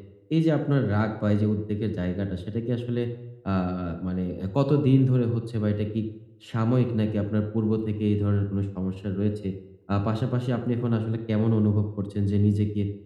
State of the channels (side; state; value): both; identical; correlation 1.00